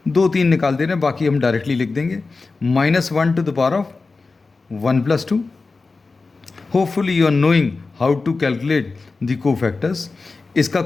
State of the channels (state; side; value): quieter; right; 4.0 dB